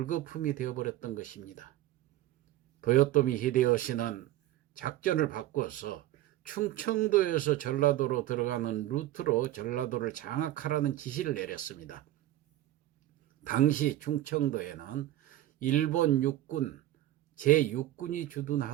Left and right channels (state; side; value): quieter; left; 14.5 dB